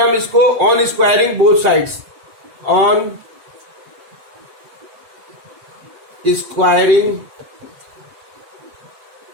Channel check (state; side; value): late; left; 7.6 ms